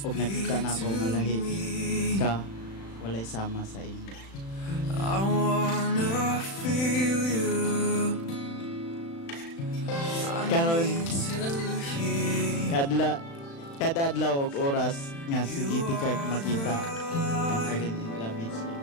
og nakita na ako nga lahi ka walay sama sa imo. I wanna feel you. Karon kada adlaw og oras nga sige di kag makita ang feeling in love with you.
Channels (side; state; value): right; late; 36 ms